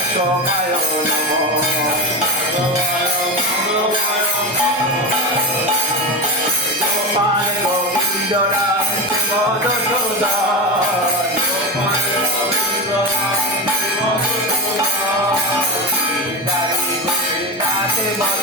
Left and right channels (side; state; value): both; normal; correlation 0.19